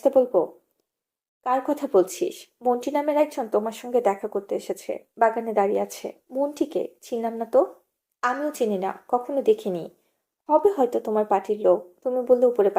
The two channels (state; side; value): identical; both; correlation 1.00